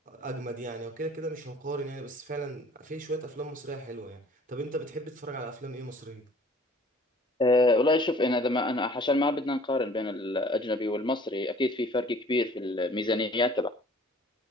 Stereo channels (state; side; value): normal; both; correlation 0.52